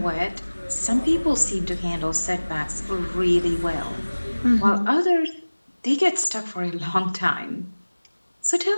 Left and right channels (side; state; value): both; inverted; correlation -1.00